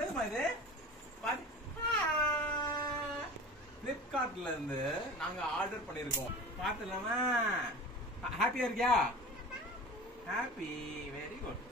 இது? பாரு. Flipkartல இருந்து நாங்க ஆர்டர் பண்ணிருக்கோம். பாத்துலாமா? ஹாப்பியா இருக்கியா? ஹாப்பி. Very good.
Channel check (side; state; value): both; normal; correlation 0.36